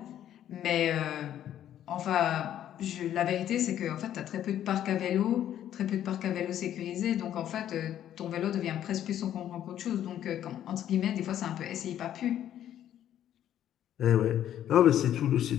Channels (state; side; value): quieter; right; 11.1 dB